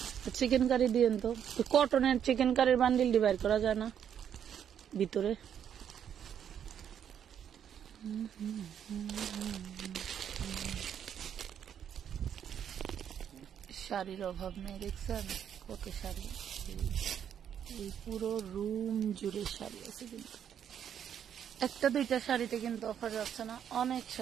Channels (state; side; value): quieter; left; 8.9 dB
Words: চিকেন কারি দিয়েন তো কটনের চিকেন কারির বান্ডিল ডিভাইড করা যায় না ভিতরে শাড়ির অভাব নেই দেখছেন কত শাড়ি এই পুরো রুম জুড়ে শাড়ি আছে কিন্তু একটা দুইটা শাড়িতে কিন্তু অফার যাচ্ছে না অনেক